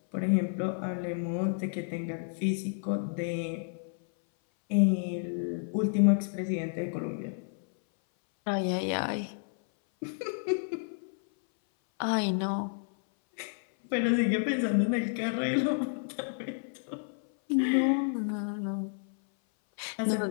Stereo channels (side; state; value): right; silent; 57 dB below the other